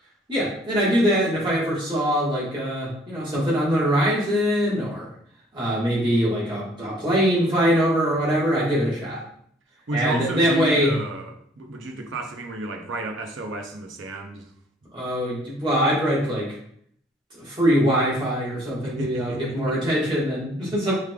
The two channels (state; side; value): normal; both; correlation 0.59